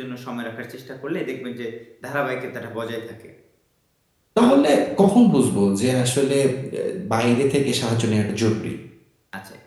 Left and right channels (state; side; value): identical; both; correlation 1.00